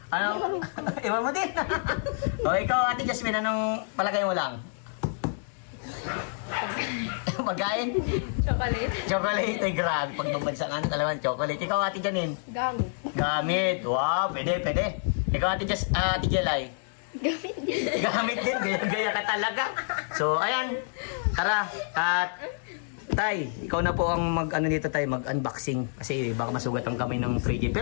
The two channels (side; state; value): right; silent; digital silence